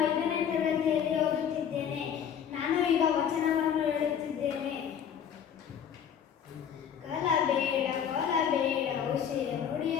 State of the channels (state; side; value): quieter; right; 8.4 dB